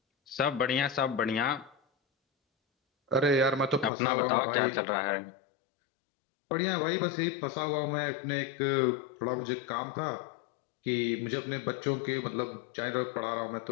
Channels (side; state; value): right; drops out; at 3.9 s